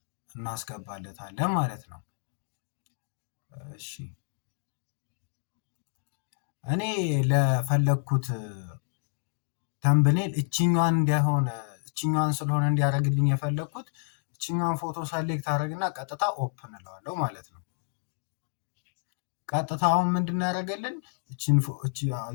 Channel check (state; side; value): silent; right; digital silence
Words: እናስገባለታለን ማለት ነው። እሺ እኔ ለፈለኩት ተምብኔል እችኛዋን ስለሆነ እንዲያደርግልኝ የፈለኩት እችኛዋን ፎቶ ሰሌክት አደረግና ቀጥታ ኦፕን እለዋለሁ ማለት ነው። ቀጥታ አሁን ምንድን ያደረገልን